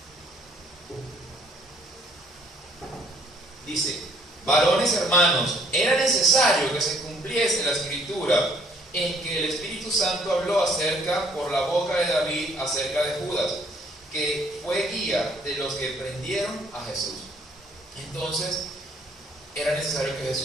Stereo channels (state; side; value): normal; both; correlation 0.62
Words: Dice: varones hermanos, era necesario que se cumpliese la escritura en que el Espíritu Santo habló acerca por la boca de David acerca de Judas, que fue guía de los que prendieron a Jesús. Entonces, era necesario que